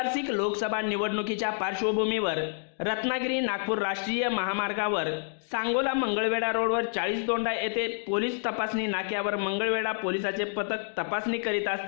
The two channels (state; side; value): silent; right; digital silence